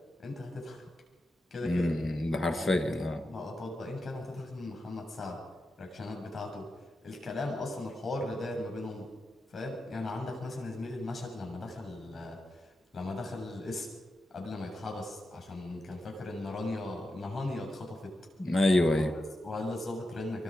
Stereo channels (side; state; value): both; normal; correlation 0.88